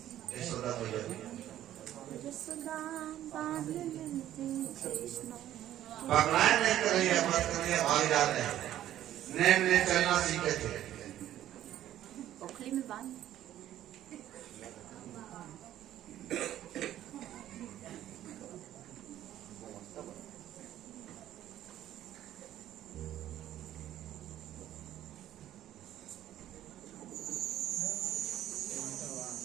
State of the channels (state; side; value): quieter; left; 12.4 dB